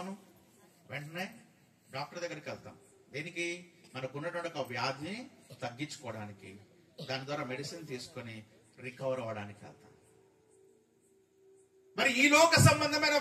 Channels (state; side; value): identical; both; correlation 1.00